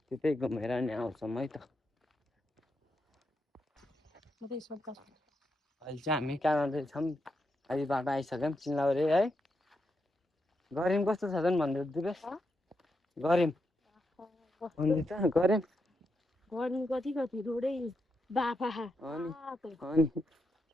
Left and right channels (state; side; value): normal; both; correlation 0.84